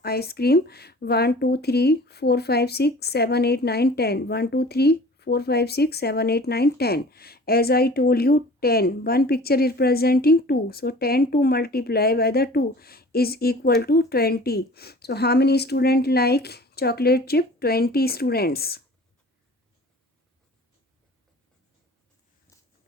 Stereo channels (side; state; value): both; normal; correlation 0.45